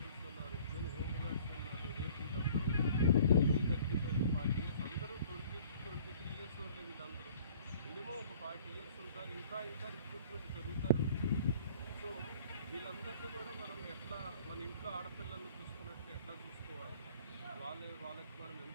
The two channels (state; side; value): inverted; both; correlation -0.52